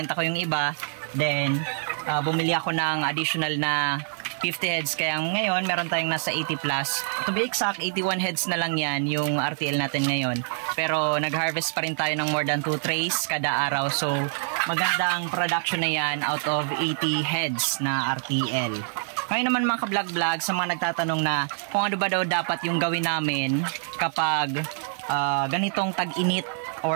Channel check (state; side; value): silent; left; 61 dB below the other